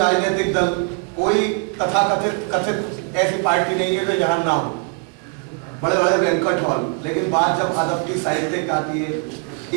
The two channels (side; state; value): left; quieter; 34.2 dB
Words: दल, कोई कथित ऐसी पार्टी नहीं है जो यहाँ ना हो, बड़े बड़े बैंक्वेट हॉल, लेकिन बात जब अदब की साहित्य की आती है,